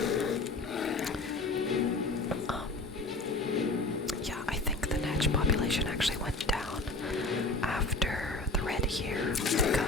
Yeah, I think the netch population actually went down after the Red Year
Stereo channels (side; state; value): right; quieter; 3.0 dB